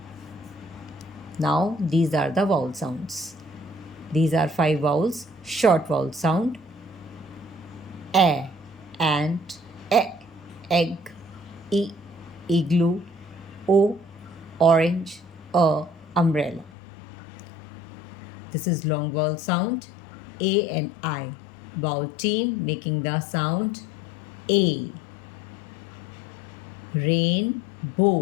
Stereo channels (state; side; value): drops out; right; at 16.7 s